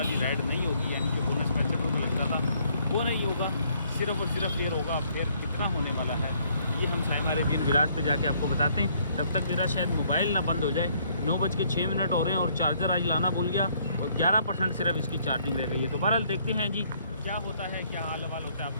राइड नहीं होगी, यानी कि बोनस 65 रुपये लगता था वो नहीं होगा, सिर्फ और सिर्फ फेयर होगा। फेयर कितना होने वाला है ये हम साइमा अरेबियन विलाज पे जाके आपको बताते हैं। तब तक मेरा शायद मोबाइल ना बंद हो जाए। 9:06 हो रहे हैं और चार्जर आज लाना भूल गया, और 11% सिर्फ इसकी चार्जिंग रह गई है। तो बहरहाल देखते हैं जी क्या होता है, क्या हाल हवाल होता है आप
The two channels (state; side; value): inverted; both; correlation -0.66